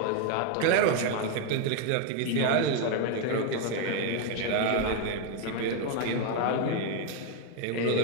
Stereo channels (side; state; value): both; different; correlation 0.01